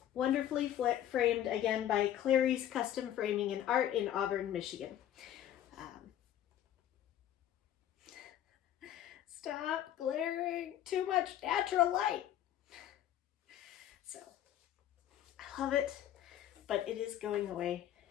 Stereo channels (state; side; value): quieter; right; 11.5 dB